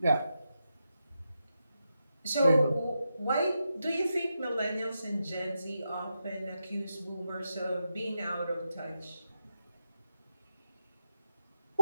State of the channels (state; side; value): inverted; both; correlation -0.86